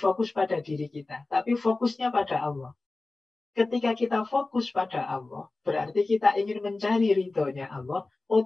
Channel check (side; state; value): right; quieter; 3.3 dB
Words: pada diri kita, tapi fokusnya pada Allah. Ketika kita fokus pada Allah, berarti kita ingin mencari ridhonya Allah,